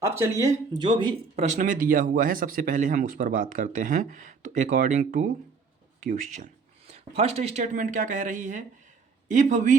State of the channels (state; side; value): quieter; left; 5.0 dB